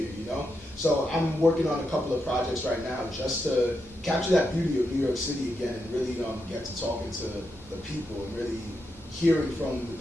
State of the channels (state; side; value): normal; both; correlation 0.84